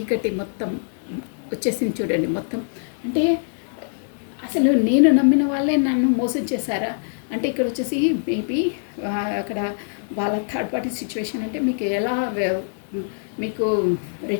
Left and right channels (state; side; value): silent; right; 63 dB below the other